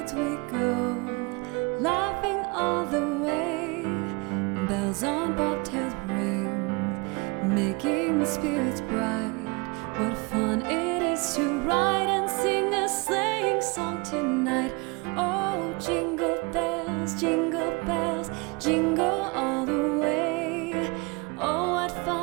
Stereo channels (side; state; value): left; quieter; 28.4 dB